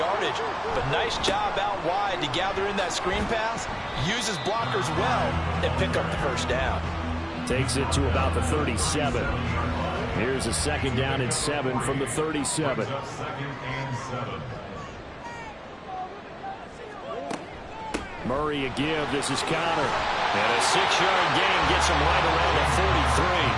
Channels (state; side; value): identical; both; correlation 1.00